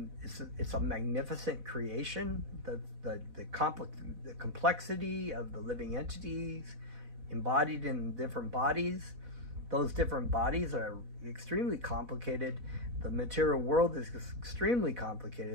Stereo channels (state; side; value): late; left; 4.1 ms